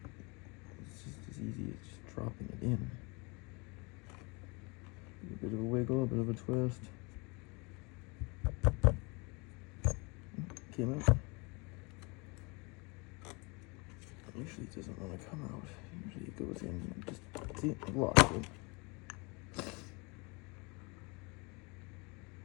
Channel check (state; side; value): quieter; right; 29.0 dB